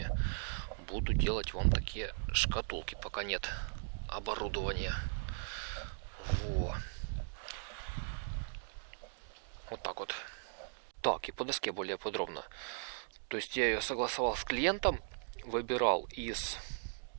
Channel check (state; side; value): silent; left; digital silence